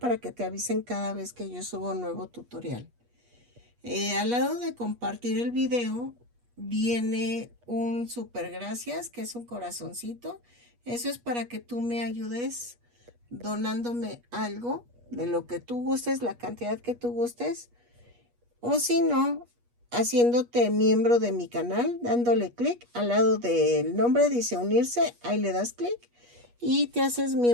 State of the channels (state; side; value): late; left; 8.3 ms